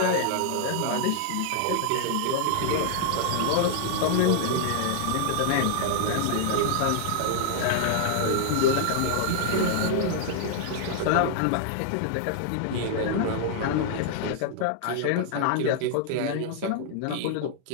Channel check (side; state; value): both; different; correlation -0.01